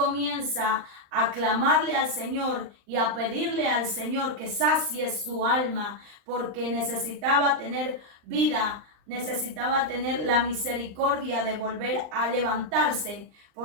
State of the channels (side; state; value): left; late; 39 ms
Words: a clamarle al Señor y a pedirle al Señor que sacie su alma, porque necesitaba tener vida, necesitaba tener la misericordia de volver a levantarse,